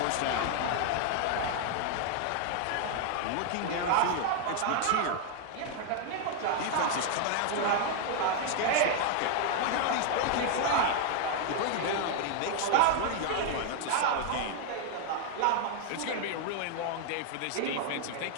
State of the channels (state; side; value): different; both; correlation 0.00